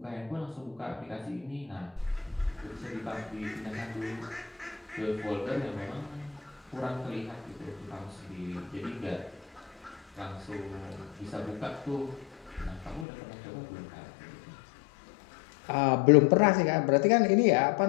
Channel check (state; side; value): drops out; right; at 13.1 s